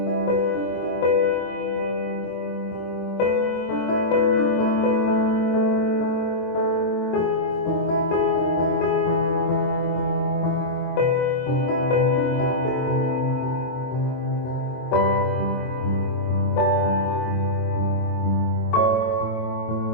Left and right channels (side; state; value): right; late; 24 ms